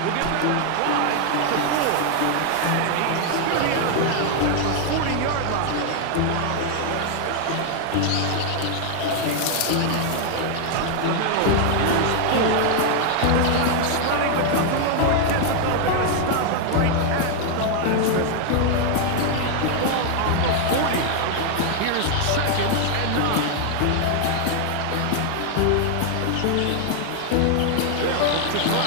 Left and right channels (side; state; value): both; different; correlation 0.00